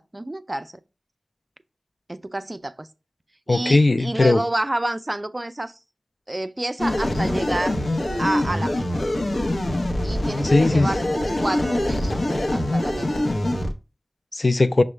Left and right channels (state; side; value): normal; both; correlation 0.97